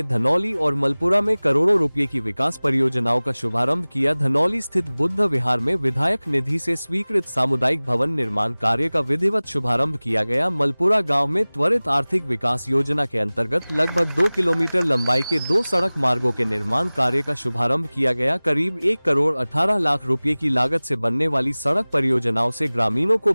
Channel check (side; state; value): both; inverted; correlation -0.99